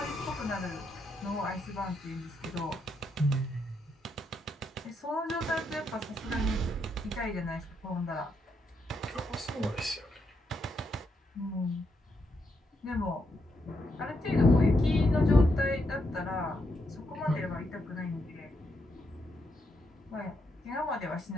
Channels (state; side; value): normal; both; correlation 0.80